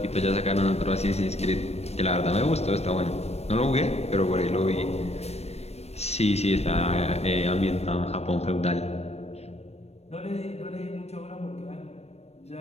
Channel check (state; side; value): late; right; 0.31 ms